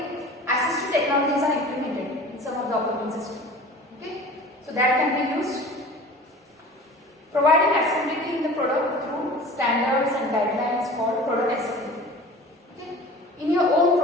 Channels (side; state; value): both; normal; correlation 0.40